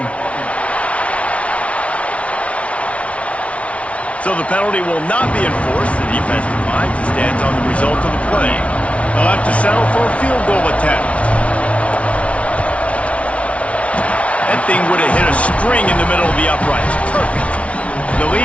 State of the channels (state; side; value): late; right; 0.063 ms